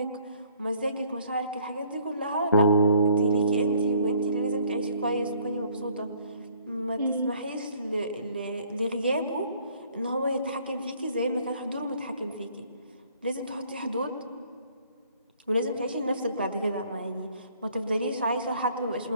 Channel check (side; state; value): both; inverted; correlation -0.60